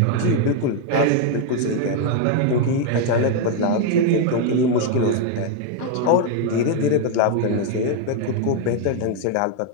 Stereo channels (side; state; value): both; different; correlation 0.00